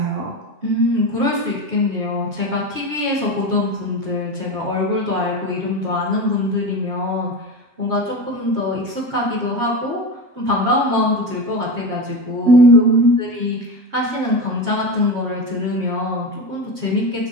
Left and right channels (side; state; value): left; late; 7.3 ms